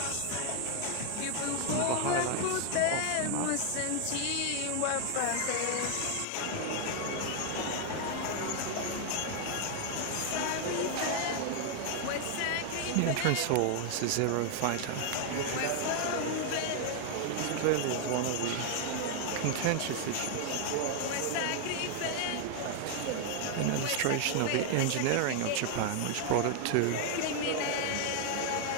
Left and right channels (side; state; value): both; different; correlation 0.00